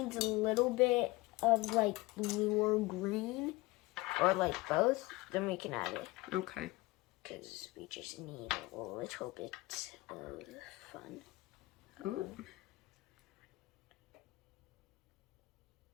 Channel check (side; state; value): right; quieter; 21.4 dB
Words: a little bit of like blue or green, or like both, then we can add it. Okay. Because we just need a little bit of fun. Ooh.